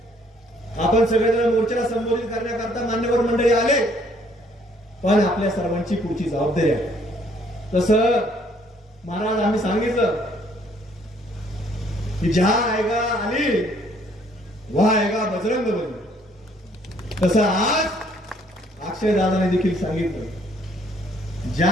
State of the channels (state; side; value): normal; both; correlation 0.64